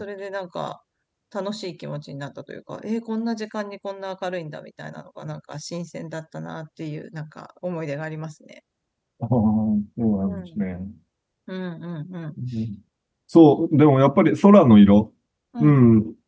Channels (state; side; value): identical; both; correlation 1.00